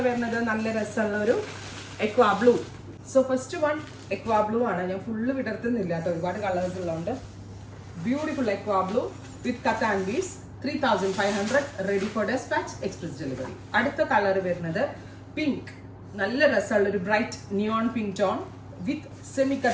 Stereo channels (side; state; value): both; identical; correlation 1.00